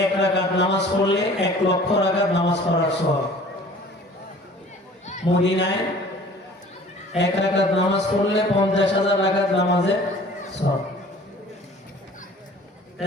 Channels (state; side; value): normal; both; correlation 0.48